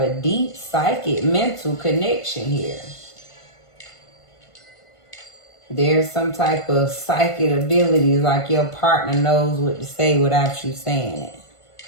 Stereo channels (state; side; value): late; right; 1.5 ms